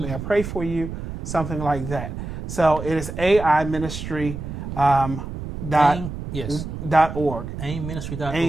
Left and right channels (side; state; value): right; noise; rumble, 7 dB below the sound